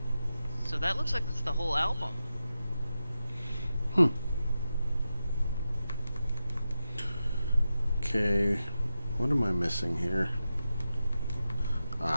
So that looks like it's the whole album. Okay, what am I missing here?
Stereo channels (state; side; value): inverted; both; correlation -0.90